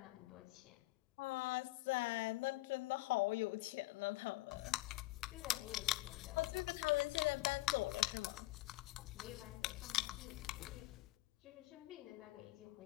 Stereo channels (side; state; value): right; quieter; 19.1 dB